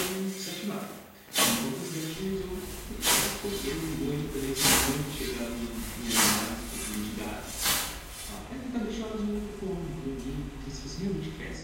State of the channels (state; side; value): identical; both; correlation 1.00